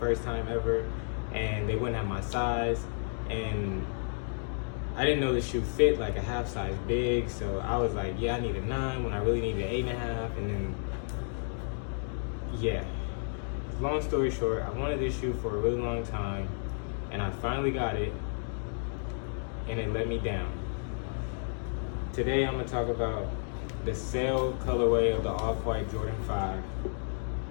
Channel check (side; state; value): right; silent; digital silence